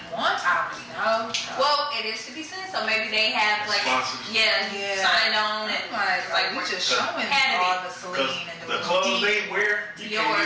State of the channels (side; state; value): both; identical; correlation 1.00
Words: wants. I don't really know. So. Well, it is 50 cents, so maybe they have like sponsors. Signed on and like we just showing all the Celine and the clothes they wear, you can't